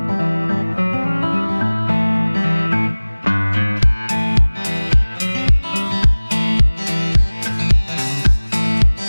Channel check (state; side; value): inverted; both; correlation -1.00